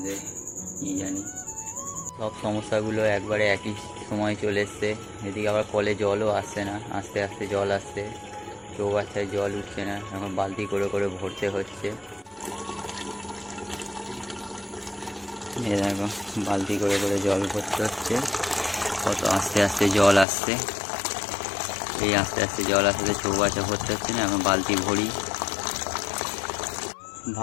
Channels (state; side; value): drops out; right; at 20.2 s